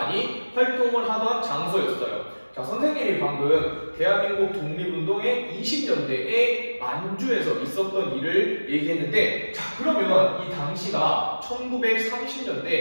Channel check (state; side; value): inverted; both; correlation -1.00